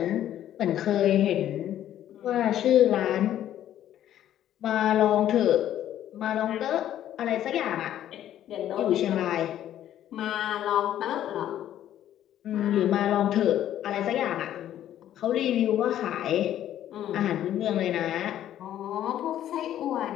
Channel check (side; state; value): right; quieter; 11.7 dB